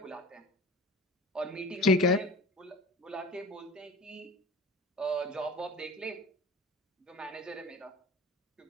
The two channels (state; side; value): normal; both; correlation 0.37